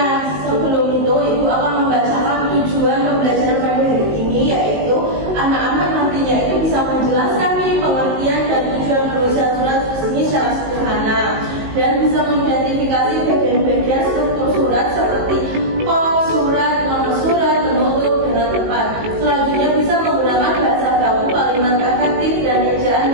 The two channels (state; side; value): late; left; 19 ms